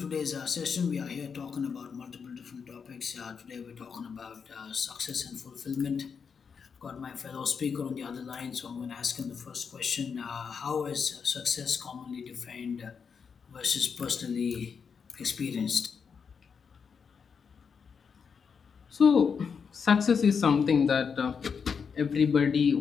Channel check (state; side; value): quieter; right; 6.2 dB